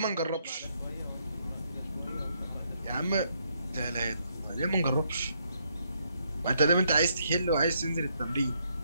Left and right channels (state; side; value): inverted; both; correlation -0.74